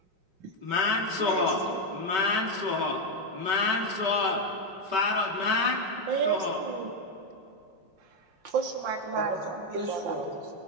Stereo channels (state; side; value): late; left; 5.2 ms